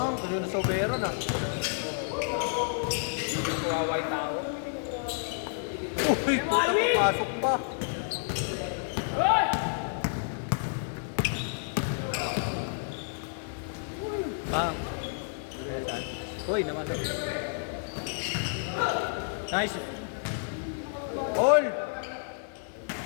tuloy na sobero na. Kawawa tao. Uy, puta, papasok pa. Ah. Uy, naman. Nice. All!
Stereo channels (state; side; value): silent; right; 55 dB below the other